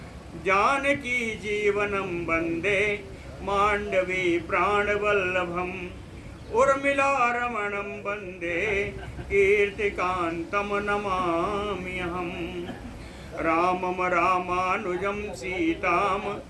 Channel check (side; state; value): both; identical; correlation 1.00